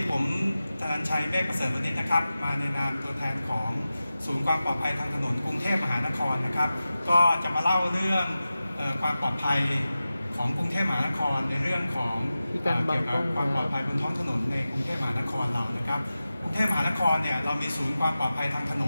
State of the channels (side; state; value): both; inverted; correlation -0.94